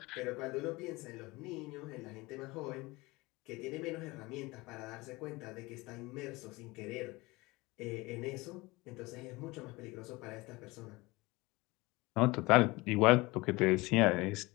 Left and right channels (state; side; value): quieter; right; 22.4 dB